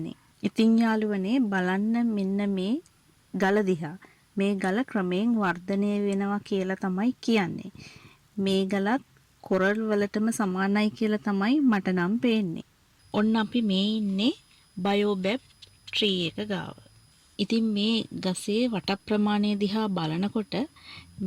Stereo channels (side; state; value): both; identical; correlation 1.00